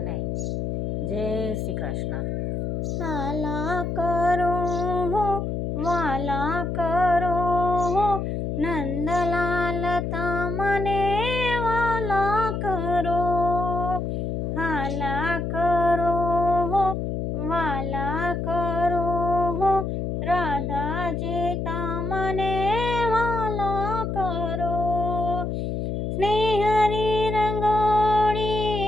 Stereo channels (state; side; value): noise; left; hum, 2 dB below the sound